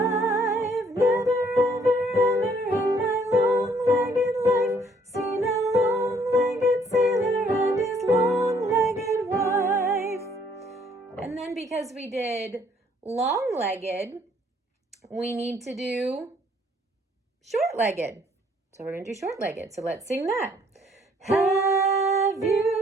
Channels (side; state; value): both; normal; correlation 0.64